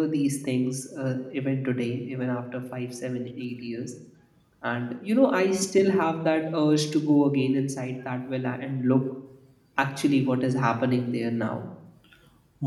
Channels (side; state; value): both; identical; correlation 1.00